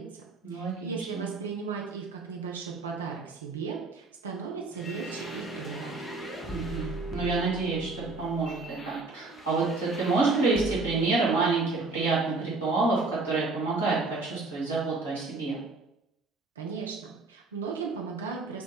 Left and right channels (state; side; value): quieter; left; 3.6 dB